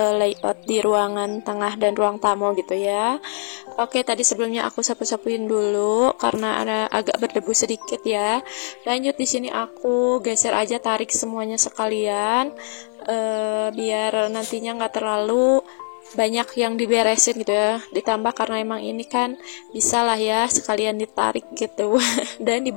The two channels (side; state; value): right; silent; 57 dB below the other